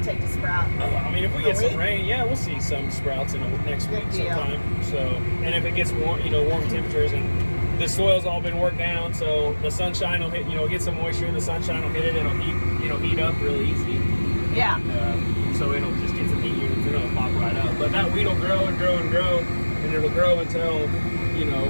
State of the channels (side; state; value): both; inverted; correlation -1.00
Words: take to sprout? If we get some rain, yeah, we'll see some sprouts in next week sometime. So, and if it gets warm, warm temperatures, and the soil's all been worked down, so the sunshine will hit, get some moisture, and the sunshine will hit it, it'll heat up really easy. Yeah. So it'll just get some heat units, and it'll pop right up. But that wheat will grow and grow and grow, and it'll grow until,